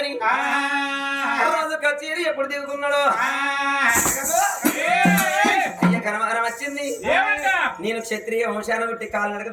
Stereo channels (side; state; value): both; identical; correlation 1.00